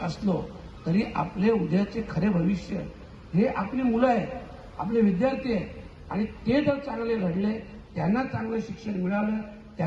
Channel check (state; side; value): identical; both; correlation 1.00